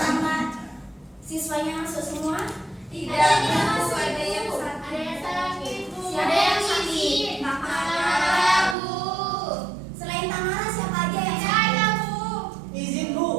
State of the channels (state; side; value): drops out; left; at 8.8 s